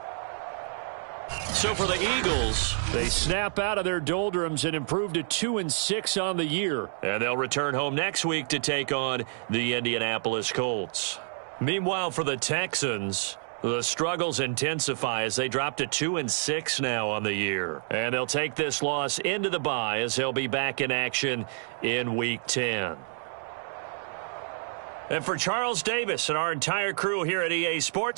So for the Eagles, They snap out of their doldrums and improve to 2-6 on the year. and they'll return home next week to take on the Indianapolis Colts. Meanwhile, for the Texans, the struggles intensify as they drop to 2-6 now on the year. And they'll take this loss into the bye as they'll be back in action in Week 10. And for Charles Davis and our entire crew here at EA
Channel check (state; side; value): silent; left; digital silence